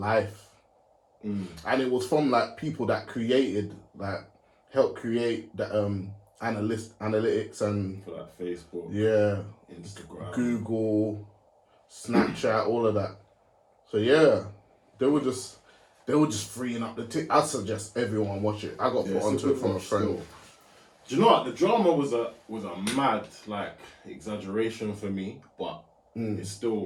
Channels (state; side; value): identical; both; correlation 1.00